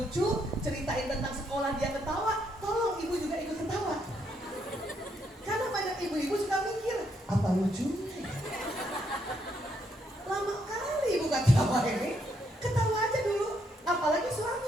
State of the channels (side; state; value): both; normal; correlation 0.75